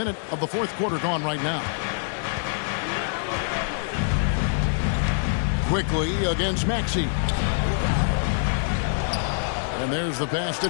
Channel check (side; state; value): right; silent; digital silence